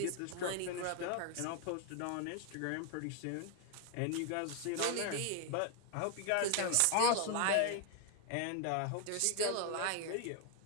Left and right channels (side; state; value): both; different; correlation 0.00